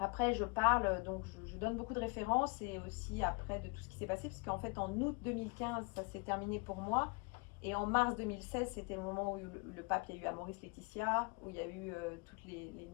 je parle, donc je donne beaucoup de références et aussi après de tout ce qui s'est passé, parce qu'en fait, en août 2015, ça s'est terminé pour moi. Et en mars 2016, c'était le moment où le pape, il y a eu Amoris Laetitia, où il y a eu tous les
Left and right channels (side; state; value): right; quieter; 29.7 dB